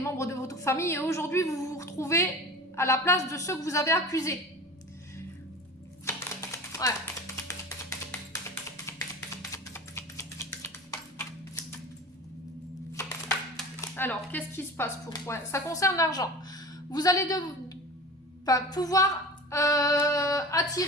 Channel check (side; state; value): both; normal; correlation 0.35